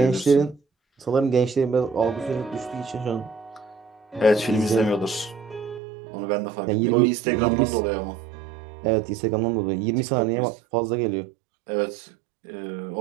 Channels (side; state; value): left; drops out; at 5.8 s